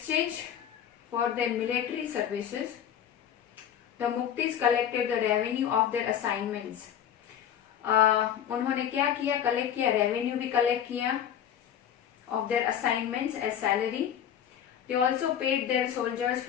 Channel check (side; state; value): right; quieter; 9.6 dB